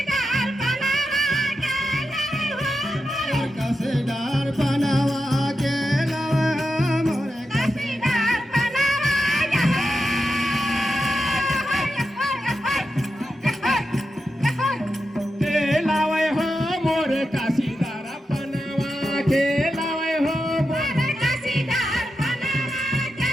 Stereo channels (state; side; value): normal; both; correlation 0.89